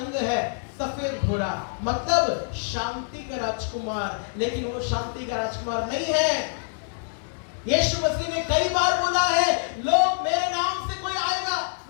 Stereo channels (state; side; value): silent; right; digital silence